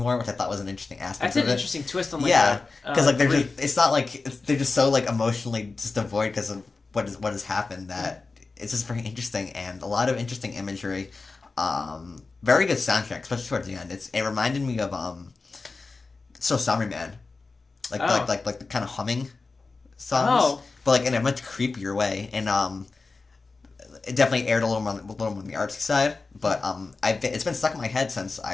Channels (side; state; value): right; quieter; 4.0 dB